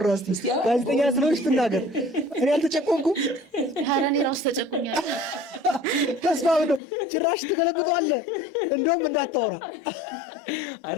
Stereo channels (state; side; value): drops out; right; at 6.8 s